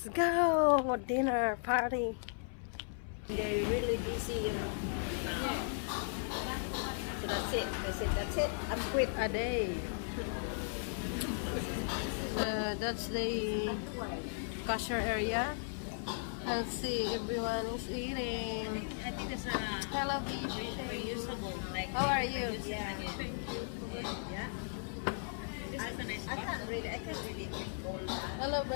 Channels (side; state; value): right; silent; 53 dB below the other